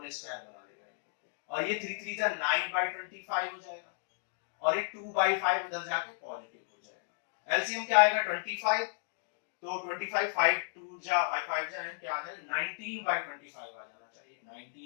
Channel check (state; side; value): silent; right; digital silence